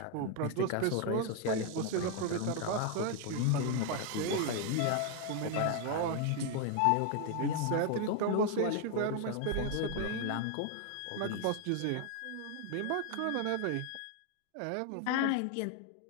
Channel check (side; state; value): both; different; correlation 0.01